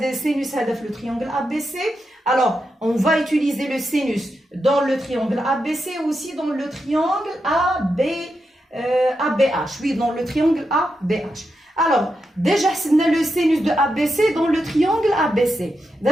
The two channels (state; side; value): normal; both; correlation 0.86